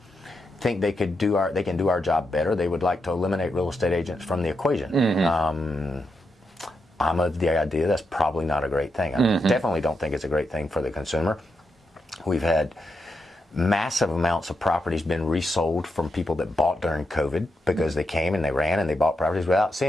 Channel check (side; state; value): both; normal; correlation 0.84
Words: think they can do our job better. They would like to eliminate real estate agents from the equation. I'm of the idea that's probably not a great thing. I definitely don't think it's a great thing for the consumer. We've had massive amounts of properties been resold from people that bought during COVID because they came and they ran and they bought properties without